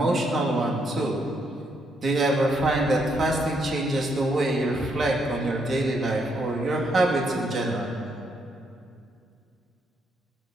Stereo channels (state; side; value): normal; both; correlation 0.75